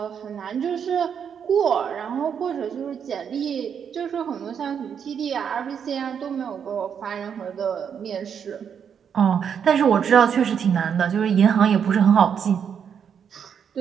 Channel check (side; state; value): left; quieter; 7.6 dB